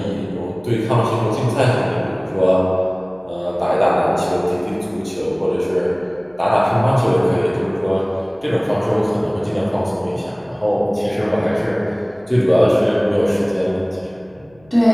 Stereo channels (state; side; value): noise; left; hum, 30 dB below the sound